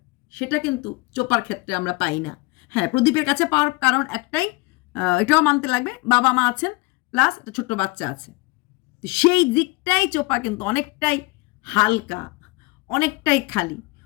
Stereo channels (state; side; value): quieter; right; 24.0 dB